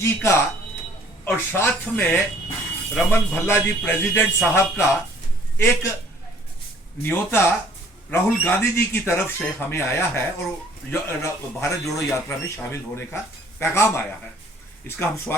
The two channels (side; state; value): both; normal; correlation 0.57